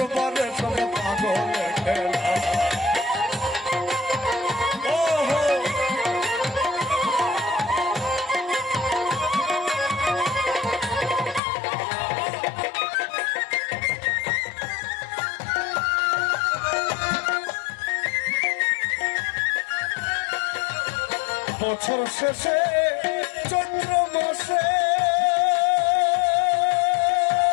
সব পাগলের খেলা। বছর শেষে চৈত্র মাসে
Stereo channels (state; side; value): drops out; right; at 11.4 s